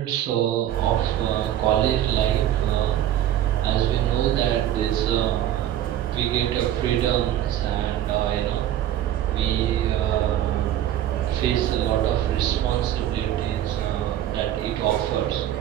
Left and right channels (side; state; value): left; quieter; 12.0 dB